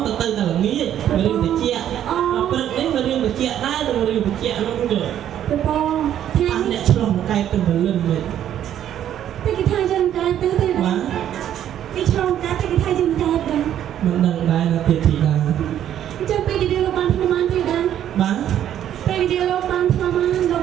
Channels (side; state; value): left; quieter; 10.7 dB